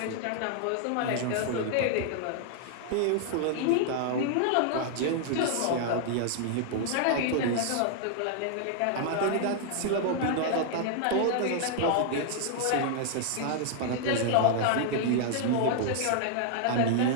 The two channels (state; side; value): different; both; correlation 0.00